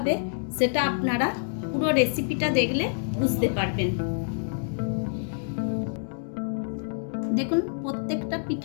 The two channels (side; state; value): right; silent; digital silence